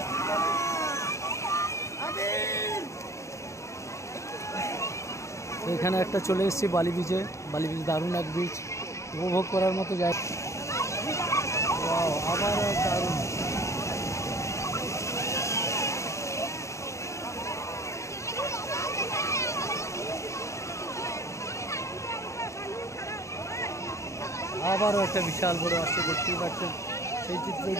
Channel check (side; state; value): right; late; 0.14 ms